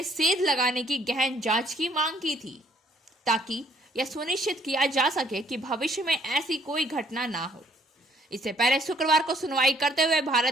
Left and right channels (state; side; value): normal; both; correlation 0.64